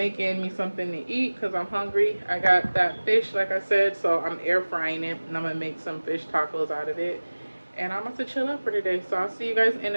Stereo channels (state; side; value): inverted; both; correlation -1.00